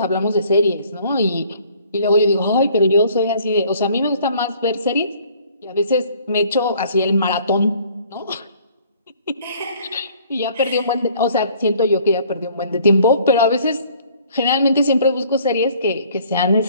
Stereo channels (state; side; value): inverted; both; correlation -0.57